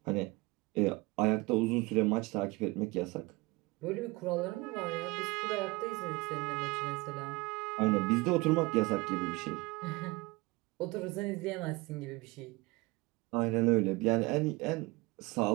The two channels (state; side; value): quieter; left; 23.1 dB